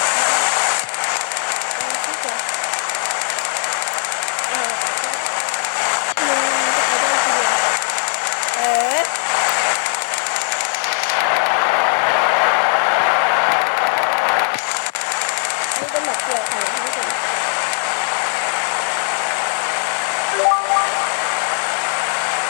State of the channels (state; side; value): silent; right; 67 dB below the other